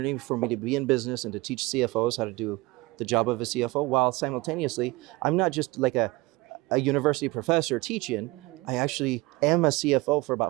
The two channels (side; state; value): left; quieter; 21.8 dB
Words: for me to be in business and to teach CFOs how to do the job of a CFO, while simultaneously I'm not just like a university professor teaching. I actually am a CFO for